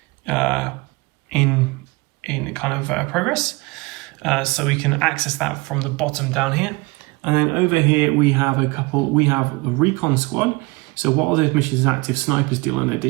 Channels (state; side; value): quieter; left; 25.1 dB